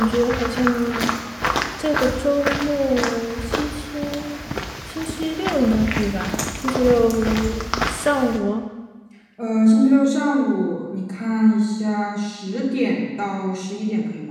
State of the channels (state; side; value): identical; both; correlation 1.00